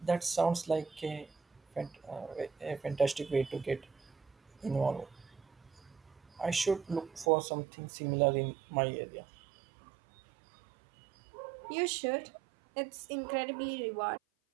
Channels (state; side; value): drops out; left; at 7.2 s